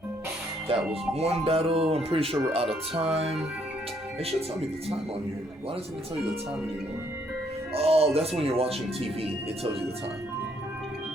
That was one battle. I'm pretty sure we're out of time. It should tell me the time on here. Why doesn't it tell you the time anymore? Oh, that's when you're watching TV. It tells you the time.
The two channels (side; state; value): both; normal; correlation 0.69